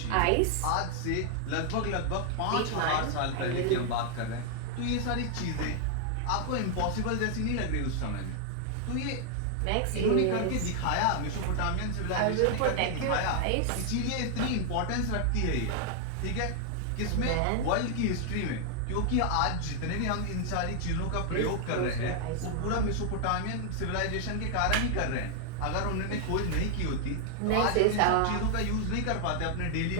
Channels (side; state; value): both; different; correlation 0.00